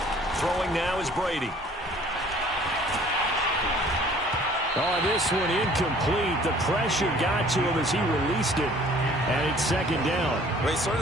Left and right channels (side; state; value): both; normal; correlation 0.54